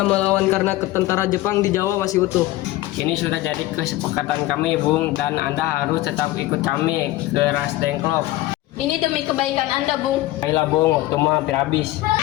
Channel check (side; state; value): right; quieter; 16.9 dB